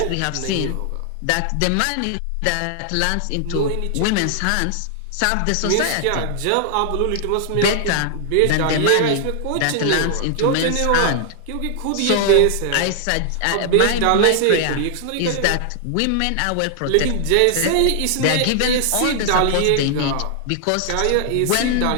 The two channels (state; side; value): different; both; correlation 0.00